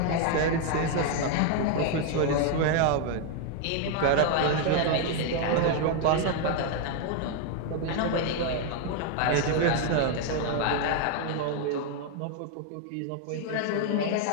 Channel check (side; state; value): both; different; correlation 0.01